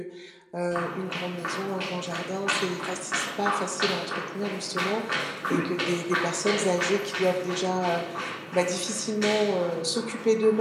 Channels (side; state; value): both; identical; correlation 1.00